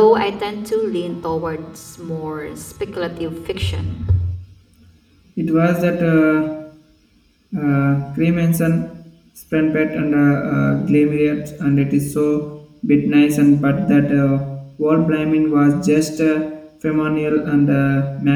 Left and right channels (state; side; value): identical; both; correlation 1.00